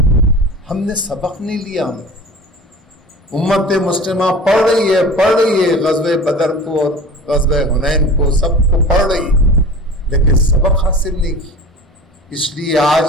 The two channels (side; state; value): both; normal; correlation 0.38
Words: ہم نے سبق نہیں لیا. ہم امت مسلمہ پڑھ رہی ہے غزوہ بدر کو اور غزوہ حنین کو, سب کو پڑھ رہی ہے, لیکن سبق حاصل نہیں کی. اس لیے آج